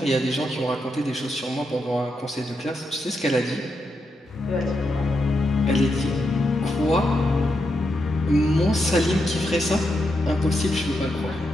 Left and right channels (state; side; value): normal; both; correlation 0.84